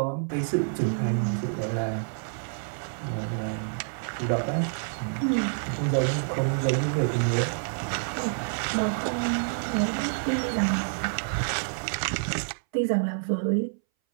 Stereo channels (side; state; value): left; silent; 59 dB below the other